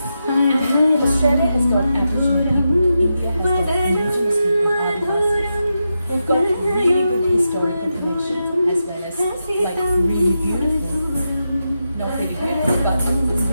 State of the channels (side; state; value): both; inverted; correlation -0.88